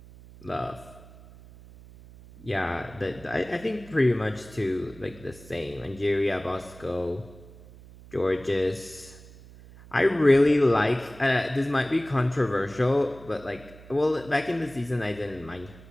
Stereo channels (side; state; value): right; noise; hum, 20 dB below the sound